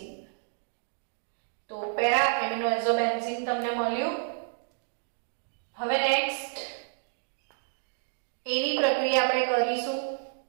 તો પેરા એમિનો એઝોબેન્ઝીન તમને મળ્યું. હવે નેક્સ્ટ એની પ્રક્રિયા આપણે કરીશું.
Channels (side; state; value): left; silent; digital silence